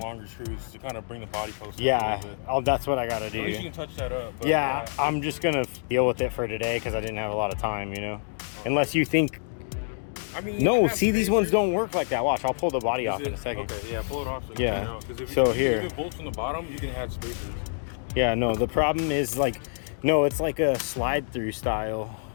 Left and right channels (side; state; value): right; silent; digital silence